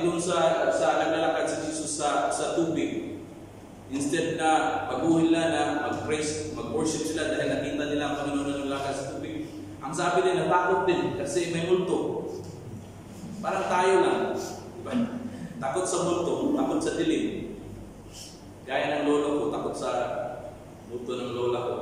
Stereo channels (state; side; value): identical; both; correlation 1.00